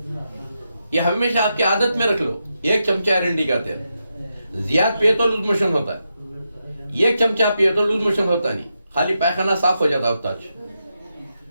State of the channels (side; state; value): both; inverted; correlation -0.86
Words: ये हमेशा आपकी आदत में रख लो। 1 चमचा एरंडी का तेल, ज्यादा पिए तो लूज मोशन होता है, 1 चमचा पिए तो लूज मोशन होता नहीं, खाली पैखाना साफ हो जाता होता।